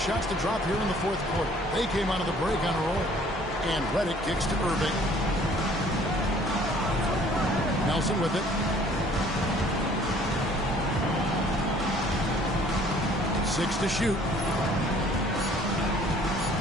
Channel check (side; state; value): both; normal; correlation 0.56